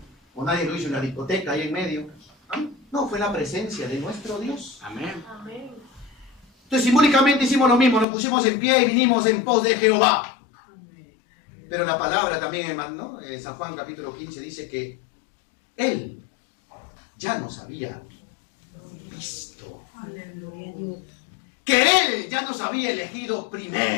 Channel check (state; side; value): drops out; right; at 8.1 s